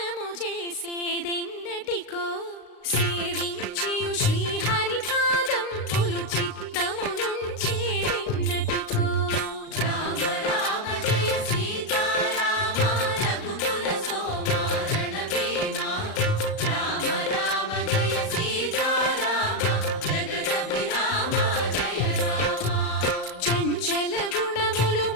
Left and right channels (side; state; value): right; late; 38 ms